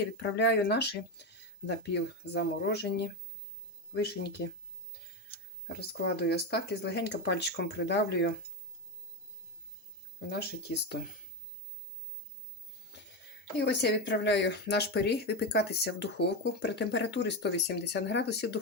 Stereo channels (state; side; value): normal; both; correlation 0.14